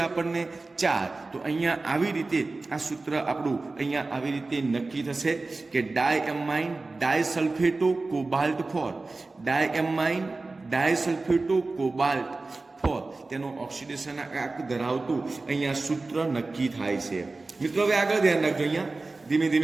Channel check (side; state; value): left; quieter; 3.5 dB